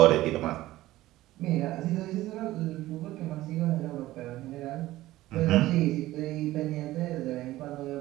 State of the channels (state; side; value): quieter; left; 16.3 dB